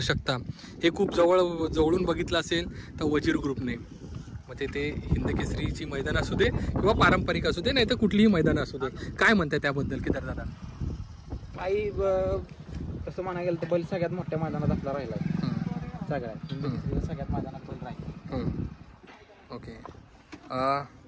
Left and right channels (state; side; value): identical; both; correlation 1.00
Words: हे खूप जवळून बघितलं असेल तर वजीर ग्रुपने. म्हणजे ते हिंद केसरीची मैदान असू दे किंवा पारंपरिक असू दे, नाही तर कुठलीही मैदानं असू दे. काय म्हणताय त्याबद्दल केदार दादा? काही तसं म्हणायला गेलं तर बैल सगळ्यात मोठ्या मैदानात आपला राहिला. सगळ्यात सगळ्यात मैदानात बैल राहील. ओके.